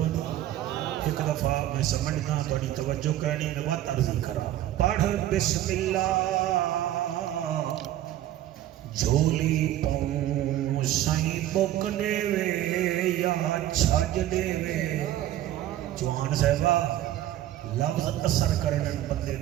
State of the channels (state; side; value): quieter; left; 13.1 dB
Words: ایک دفعہ میں سمجھنا توڑی توجہ کرنی میں بات عرضی کرا پڑھ بسم اللہ جھولی پاؤں سائیں بک دے وے یا چھج دے وے جوان صاحبہ لفظ اثر کرنے بندے